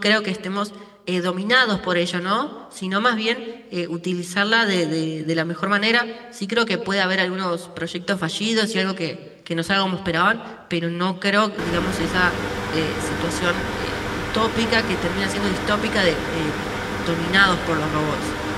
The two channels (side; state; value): both; identical; correlation 1.00